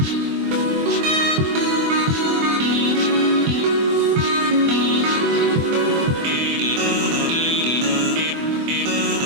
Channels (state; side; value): late; left; 24 ms